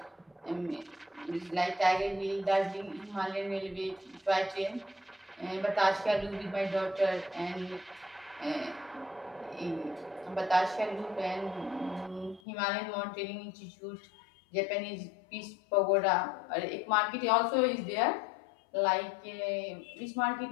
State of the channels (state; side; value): drops out; right; at 12.4 s